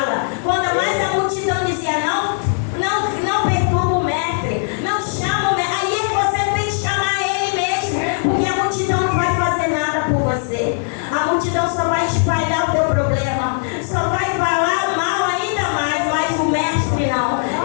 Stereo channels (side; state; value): right; silent; digital silence